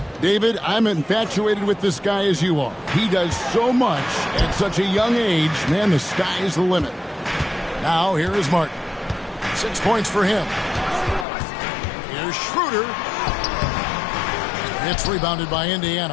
David, I'm infatuated with this guy as you are. He does so much at such a young age. Man, the sky is the limit. Now, here is Martin. 6 points for him. Here's Schroeder. It's rebounded by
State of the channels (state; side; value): drops out; right; at 11.2 s